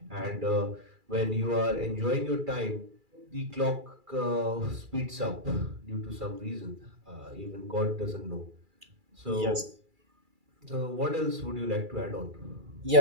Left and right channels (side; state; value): left; late; 2.3 ms